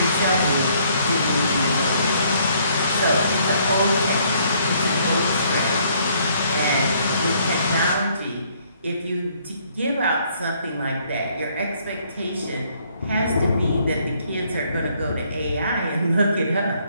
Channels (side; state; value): both; inverted; correlation -0.66